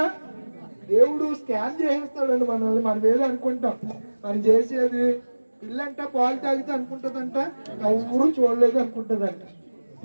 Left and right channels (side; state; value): both; inverted; correlation -1.00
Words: దేవుడు స్కాన్ చేసేస్తాడండి మనల్ని. మనం ఏదో అనుకుంటాం, మనం చేసేది పిల్లంట పాలు తాగితే అనుకుంటుందంట ఎవరు చూడలేదు అనుకుంటుందంట.